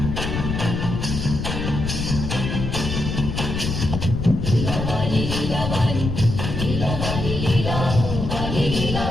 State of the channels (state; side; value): noise; left; rumble, 3 dB below the sound